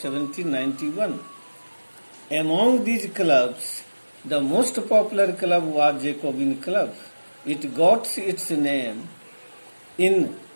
Among these clubs, the most popular club was Jacobin Club. It got its name in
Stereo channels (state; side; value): inverted; both; correlation -1.00